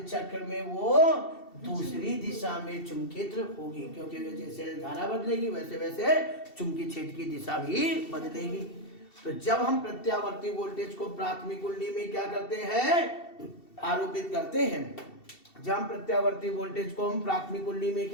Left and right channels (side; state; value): right; late; 2.7 ms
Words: चक्र में वो दूसरी दिशा में चुंबकित होगी, क्योंकि जैसे धारा बदलेगी वैसे वैसे चुंबकीय क्षेत्र की दिशा भी बदलेगी। तो जब हम प्रत्यावर्ती वोल्टेज को प्राथमिक कुंडली में क्या करते हैं, आरोपित करते हैं, जब हम प्रत्यावर्ती वोल्टेज को हम प्राथमिक कुंडली में